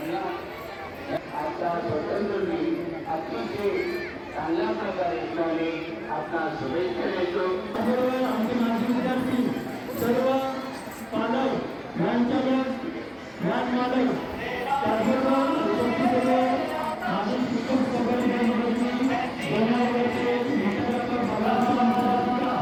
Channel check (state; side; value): identical; both; correlation 1.00